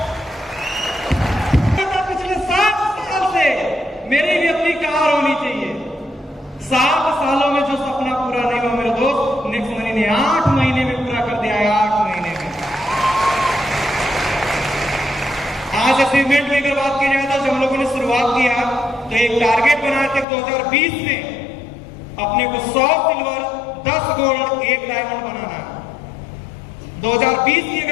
पिछले 7 साल से मेरी भी अपनी कार होनी चाहिए। 7 सालों में जो सपना पूरा नहीं हुआ मेरे दोस्त, नेक्स्ट मनी ने 8 महीने में पूरा कर दिया है। 8 महीने में। आज अचीवमेंट की अगर बात की जाए तो जब हम लोगों ने शुरुआत किया तो एक टारगेट बनाए थे 2020 में अपने को 100 सिल्वर, 10 गोल्ड, 1 डायमंड बनाना है। 2020 की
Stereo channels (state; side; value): drops out; right; at 20.2 s